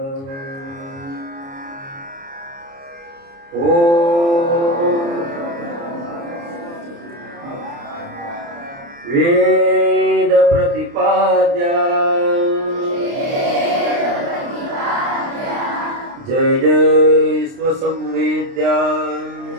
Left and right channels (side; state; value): left; late; 29 ms